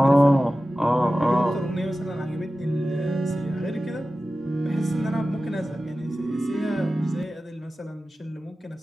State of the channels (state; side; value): normal; both; correlation 0.95